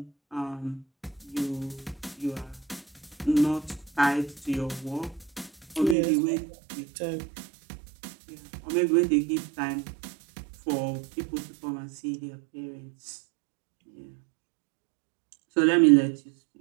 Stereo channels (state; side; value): drops out; left; at 6.0 s